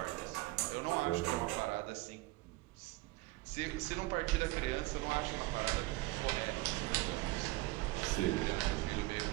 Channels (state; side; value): quieter; left; 20.2 dB